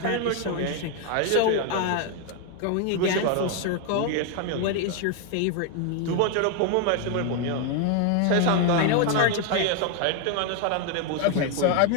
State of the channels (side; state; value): both; different; correlation 0.01